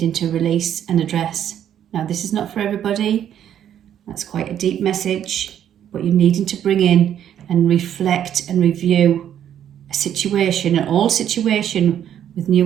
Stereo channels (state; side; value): quieter; left; 10.0 dB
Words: to release and address. Now, this is not for everybody. That's quite a deep message, but you're needing to bring in and reflect and review a situation, an old situation with